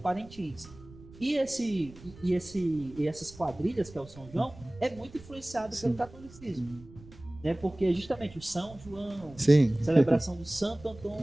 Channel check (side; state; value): right; noise; rumble, 20 dB below the sound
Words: E essas quadrilhas, que é o São João, é muito influenciado pelo catolicismo, né? Porque justamente o São João, celebração do Santo